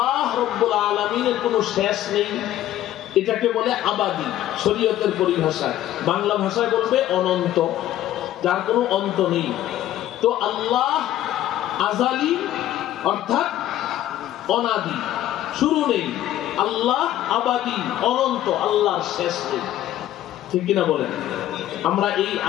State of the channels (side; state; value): right; quieter; 13.0 dB